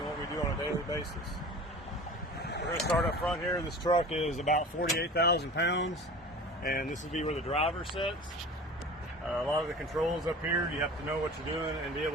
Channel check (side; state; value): both; normal; correlation 0.38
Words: what we do on a daily basis. We're going to start up front here. This truck is about 48,000 pounds, and this will be where the driver sits. A lot of the controls up here, you have to know what you're doing and be